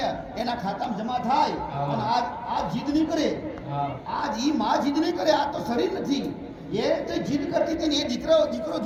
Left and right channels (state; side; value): identical; both; correlation 1.00